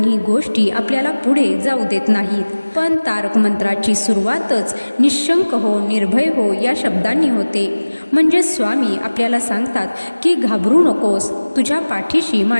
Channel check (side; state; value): both; inverted; correlation -1.00